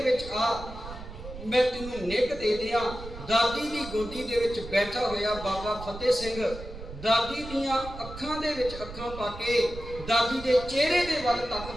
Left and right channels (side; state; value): right; noise; rumble, 12 dB below the sound